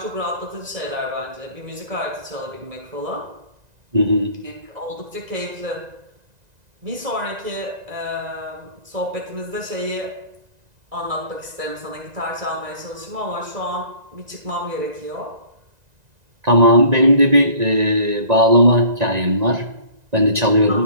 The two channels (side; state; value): left; late; 1.9 ms